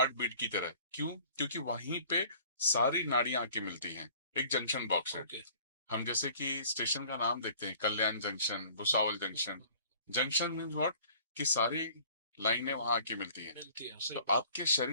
बीट की तरह। क्यों? क्योंकि वहीं पे सारी नाड़ियां आके मिलती हैं, एक जंक्शन बॉक्स है। ओके। हम जैसे कि स्टेशन का नाम देखते हैं, Kalyan junction, Bhusawal junction. Junction means what, कि सारी लाइनें वहां आके मिलती हैं। मिलती है, तो सही बात। आपके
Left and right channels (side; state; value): both; inverted; correlation -0.51